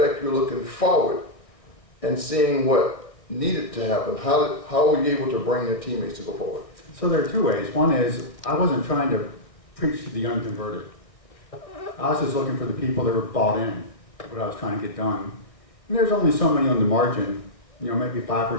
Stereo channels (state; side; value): late; right; 1.6 ms